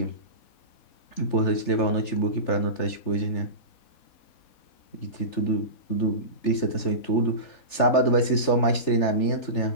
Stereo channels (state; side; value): late; right; 3.4 ms